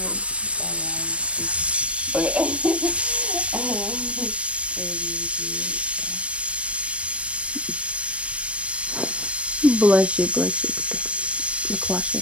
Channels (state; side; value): late; left; 0.061 ms